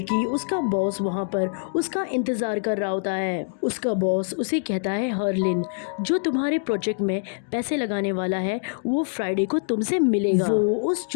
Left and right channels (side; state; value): right; silent; digital silence